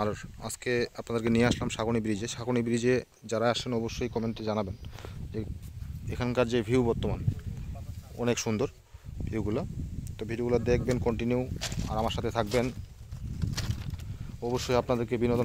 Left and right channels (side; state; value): both; identical; correlation 1.00